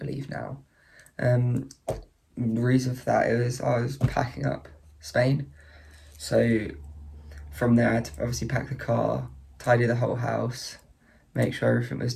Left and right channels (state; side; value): identical; both; correlation 1.00